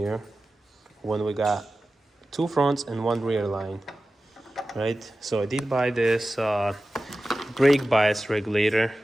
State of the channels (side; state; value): both; normal; correlation 0.95